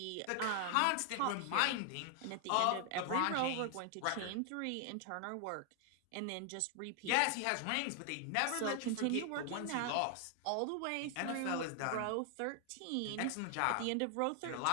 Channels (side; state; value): both; different; correlation 0.00